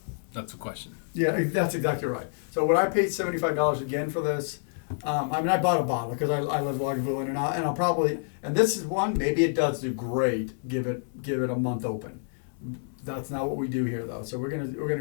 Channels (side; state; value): right; silent; digital silence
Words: That's the question. Yeah, that's exactly right. So when I paid $75 again for this, I bought a bottle because I love Lagavulin, and I'll probably, and this is one, maybe it does do great. Give it a month open. That's not what we do here though. So we're gonna